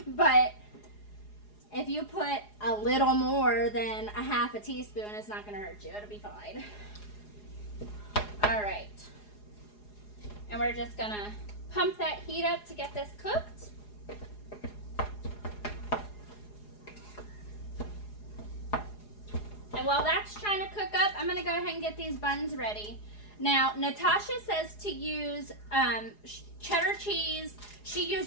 But if you put a little more than a half a teaspoon, it's not going to hurt you. It'll be fine. All right. And we're just going to pump that heat up to get this cooked. And while that's trying to cook up, I'm going to go ahead and get these buns ready. Now, Natasha says to use cheddar cheese. She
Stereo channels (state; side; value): late; right; 4.8 ms